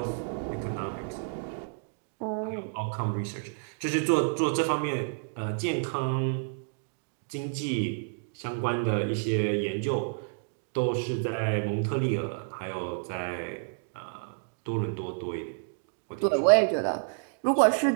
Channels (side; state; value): left; silent; digital silence